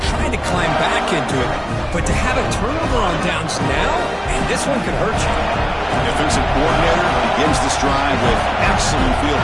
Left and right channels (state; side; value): identical; both; correlation 1.00